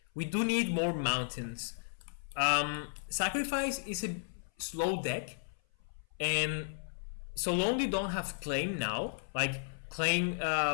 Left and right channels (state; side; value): silent; right; 55 dB below the other